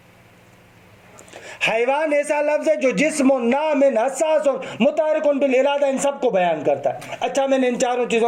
حیوان ایسا لفظ ہے جو جسم نام حساس متحرک بالارادہ ان سب کو بیان کرتا ہے. اچھا میں نے ان چاروں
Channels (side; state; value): both; identical; correlation 1.00